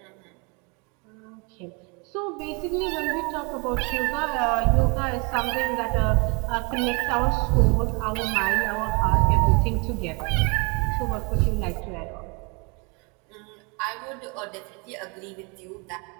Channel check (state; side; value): quieter; left; 31.3 dB